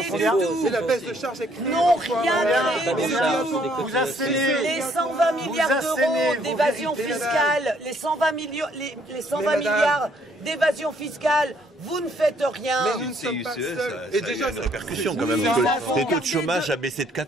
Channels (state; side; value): normal; both; correlation 0.66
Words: du tout. C'est la baisse de charges n'ont rien créé du tout. Vous assénez Les 120 milliards d'euros d'évasion fiscale, les 120 milliards d'évasion fiscale, vous ne faites rien. Mais nous ne sommes pas seuls. Et déjà, il y a une répercussion quand même. Le taux de chômage a baissé de